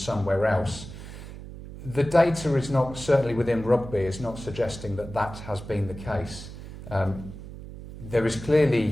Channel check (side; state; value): right; noise; hum, 13 dB below the sound